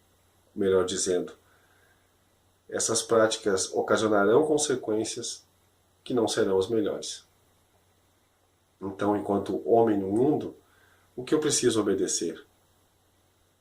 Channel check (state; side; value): identical; both; correlation 1.00